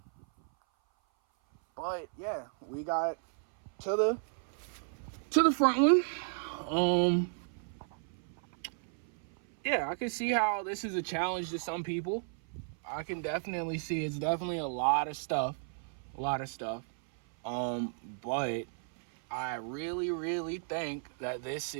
But yeah, we got to the front one. Yeah, I can see how this is a challenge to some people. I can definitely see it's definitely a lot of stuff. But I really, really think that this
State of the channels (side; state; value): left; silent; 55 dB below the other